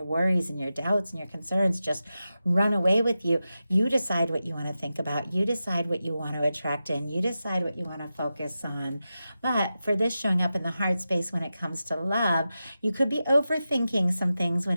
worries and your doubts and your concerns just run away with you. You decide what you want to think about. You decide what you want to attract in. You decide what you want to focus on. But for this showing up in the heart space when it comes to love, you could be overthinking some things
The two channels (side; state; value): both; inverted; correlation -0.92